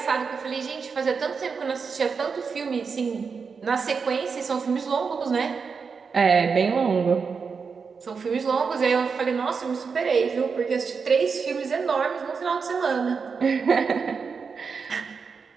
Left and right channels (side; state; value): left; quieter; 5.5 dB